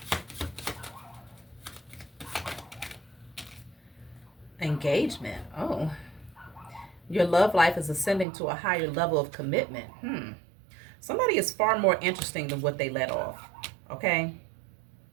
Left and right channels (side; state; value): left; drops out; at 8.2 s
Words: Engagement. Oh. Your love life is ascending to a higher level of commitment. Somebody is far more interesting than what they let off. Okay?